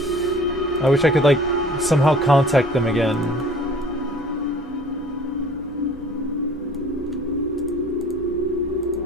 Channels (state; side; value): normal; both; correlation 0.48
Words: I wish I could like somehow contact them again.